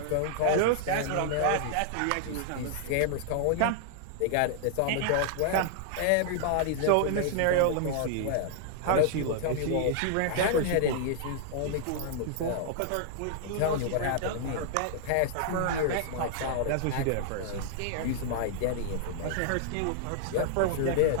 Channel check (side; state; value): both; different; correlation -0.01